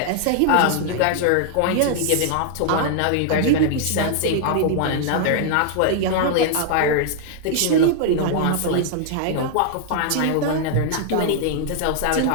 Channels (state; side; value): different; both; correlation -0.01